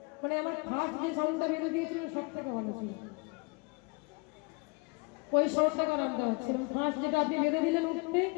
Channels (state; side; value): quieter; right; 29.8 dB